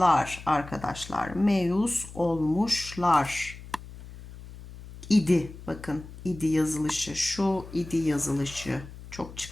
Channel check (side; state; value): left; noise; hum, 15 dB below the sound